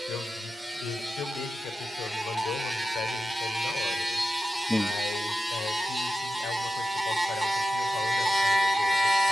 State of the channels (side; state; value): both; normal; correlation 0.91